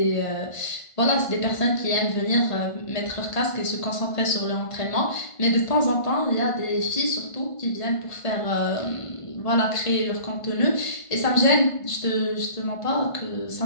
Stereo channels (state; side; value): late; right; 1.5 ms